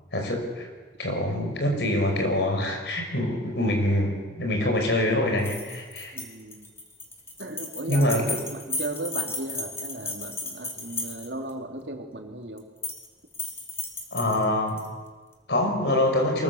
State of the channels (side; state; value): both; normal; correlation 0.27